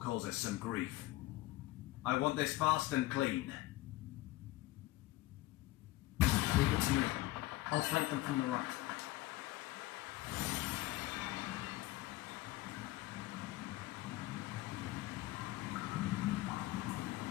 us some grief. I want this fast and clean. Leave it to me. I'll flank them from the right.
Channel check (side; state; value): right; quieter; 17.7 dB